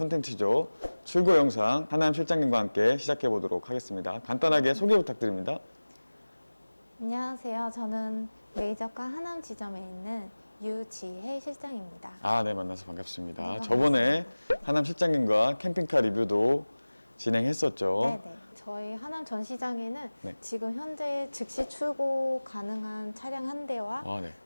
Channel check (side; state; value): both; inverted; correlation -1.00